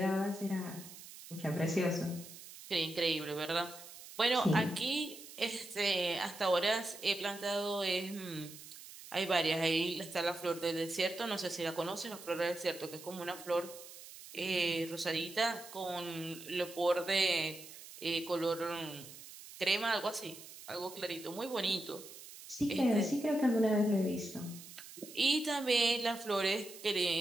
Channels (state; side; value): noise; right; hiss, 15 dB below the sound